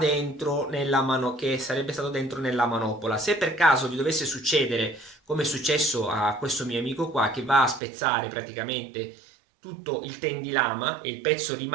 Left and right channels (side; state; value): left; drops out; at 7.8 s